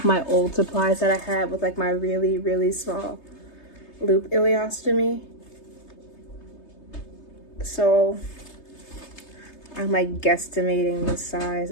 my old supplies that I had with like my really, really small loop ileostomy. So I'm like guesstimating the size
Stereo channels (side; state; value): right; late; 3.3 ms